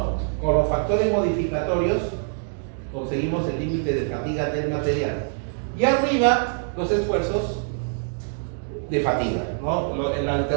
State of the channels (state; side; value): silent; left; digital silence